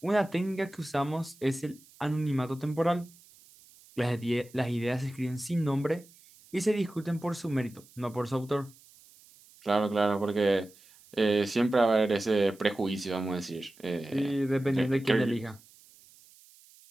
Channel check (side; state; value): right; noise; hiss, 26 dB below the sound